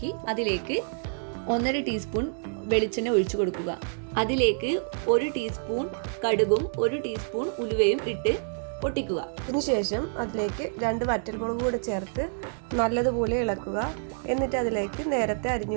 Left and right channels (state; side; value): silent; left; digital silence